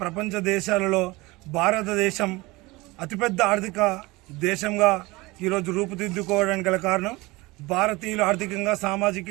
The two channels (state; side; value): quieter; left; 22.2 dB